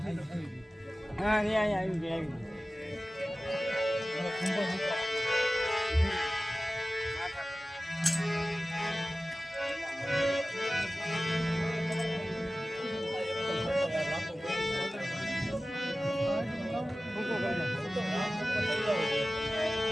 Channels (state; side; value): normal; both; correlation 0.96